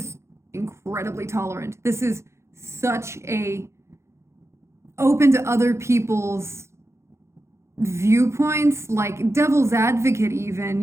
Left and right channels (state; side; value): late; left; 0.13 ms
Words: incredibly tolerant. This is such a open to other people's viewpoints, like devil's advocate even.